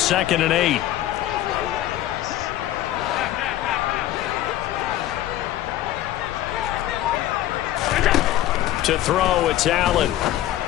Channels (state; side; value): quieter; right; 13.8 dB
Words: and 8. To throw, it's Allen.